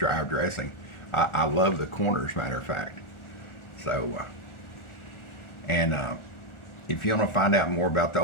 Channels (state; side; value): late; right; 1.4 ms